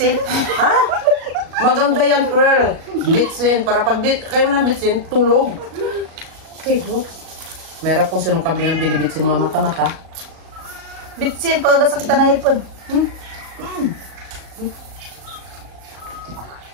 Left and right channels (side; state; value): left; late; 37 ms